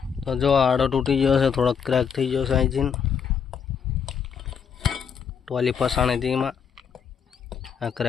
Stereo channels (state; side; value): quieter; right; 7.1 dB